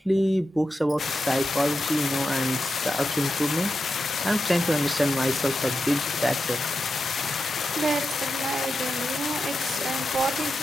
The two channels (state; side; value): normal; both; correlation 0.89